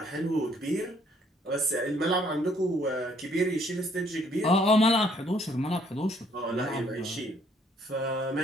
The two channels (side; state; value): both; normal; correlation 0.64